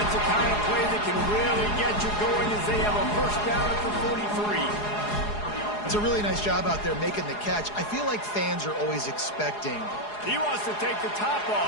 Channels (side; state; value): right; late; 4.8 ms